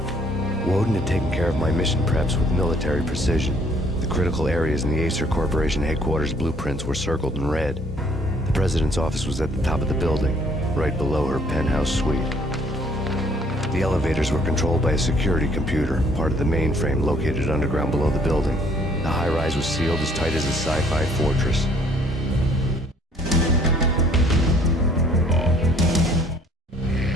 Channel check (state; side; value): normal; both; correlation 0.61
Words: Woden had taken care of my mission preps with military precision. The critical areas in the Acer Corporation headquarters blueprints were circled in red. The president's office was at the top of the building, right below her penthouse suite. The elevators were controlled by a security computer, part of the mainframe located underground below the building. The high-rise was sealed as tight as a sci-fi fortress.